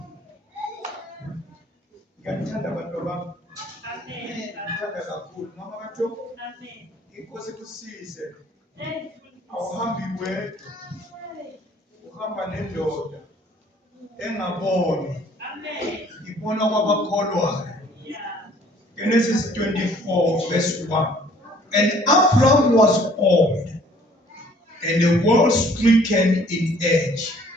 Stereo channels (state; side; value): normal; both; correlation 0.57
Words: Ngiyathanda abantu bami. Amen. Ngithanda kakhulu. Mama kaJobo. Amen. Inkosi kusize. Awuhambi wedwa. Uhamba nendoda engaboni. Amen. Ibona kwabakholwayo. Yeah. Genesis 24 verse 1. And Abraham was old, and the world stricken in age.